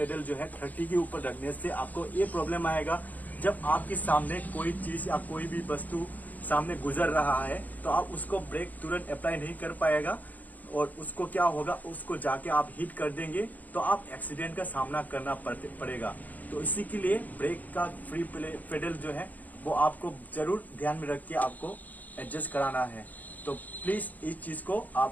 जो है 30 के ऊपर रखने से आपको ये प्रॉब्लम आएगा, जब आपके सामने कोई चीज या कोई भी वस्तु सामने गुजर रहा है तो आप उसको ब्रेक तुरंत अप्लाई नहीं कर पाएगा। और उसको क्या होगा, उसको जाके आप हिट कर देंगे तो आप एक्सीडेंट का सामना करना पड़ेगा। तो इसी के लिए ब्रेक का फ्री पेडल जो है वो आपको जरूर ध्यान में रख के आपको एडजस्ट कराना है। तो प्लीज इस चीज को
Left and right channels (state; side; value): late; right; 0.080 ms